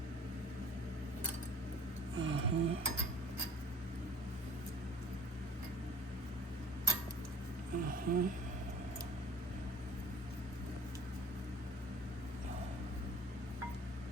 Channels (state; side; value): normal; both; correlation 0.50